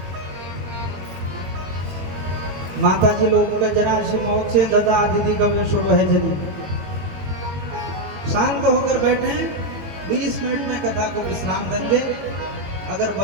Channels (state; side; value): late; left; 21 ms